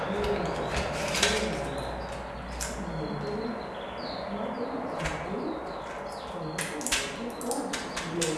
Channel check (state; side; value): identical; both; correlation 1.00